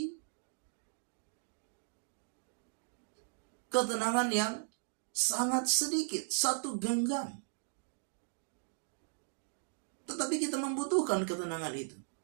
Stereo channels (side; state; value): left; silent; digital silence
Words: ketenangan yang sangat sedikit, 1 genggam. Tetapi kita membutuhkan ketenangan itu.